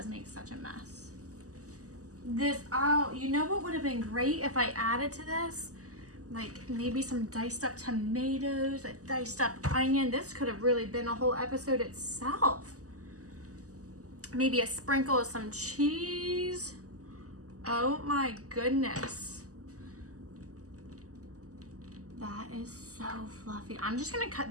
make such a mess. This, oh, you know what would have been great if I added to this? Like maybe some diced up tomatoes, a diced up onion. This could have really been a whole episode itself. Maybe a sprinkle of some cheese. Oh my goodness. That is so fluffy. I'm just gonna cut,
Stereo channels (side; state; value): left; late; 0.66 ms